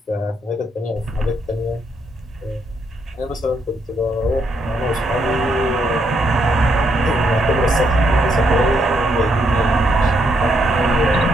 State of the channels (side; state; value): both; normal; correlation 0.76